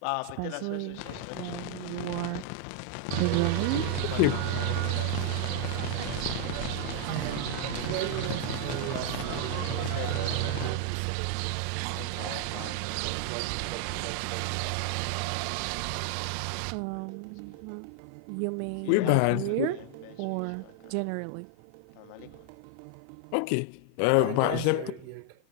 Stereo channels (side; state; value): both; different; correlation 0.00